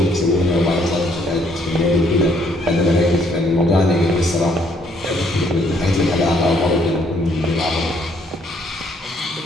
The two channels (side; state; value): both; normal; correlation 0.67